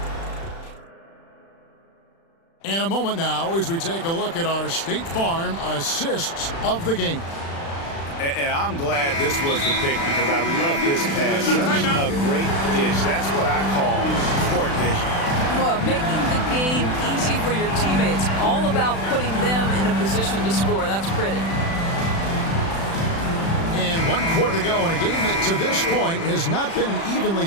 And a moment now as we take a look at our State Farm assists of the game. And I'm glad this was the pick because I love this pass. Such a great dish. That's what I call court vision. Well, making the game easy for your teammates. All about putting them in a position to score. That's pretty. And 1 quarter to go in a game that to this point has not been an evenly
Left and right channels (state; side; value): late; right; 36 ms